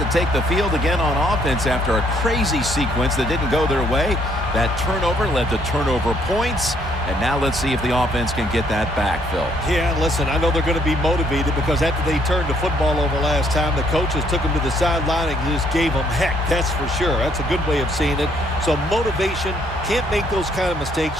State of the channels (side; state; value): both; normal; correlation 0.68